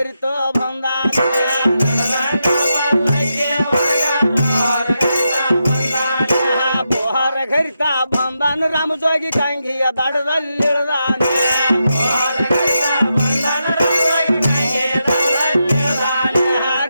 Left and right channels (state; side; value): inverted; both; correlation -0.86